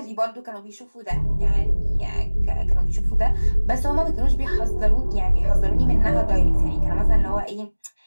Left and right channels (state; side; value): inverted; both; correlation -1.00